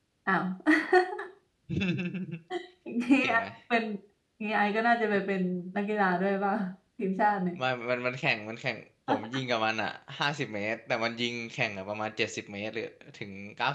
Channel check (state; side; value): identical; both; correlation 1.00